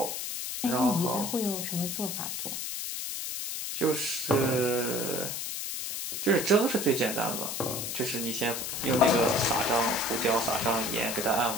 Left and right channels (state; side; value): noise; left; hiss, 4 dB below the sound